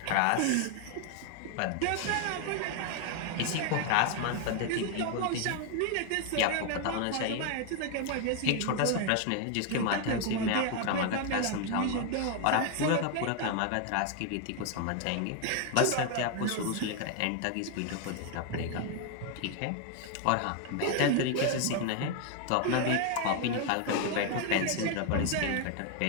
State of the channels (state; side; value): different; both; correlation 0.01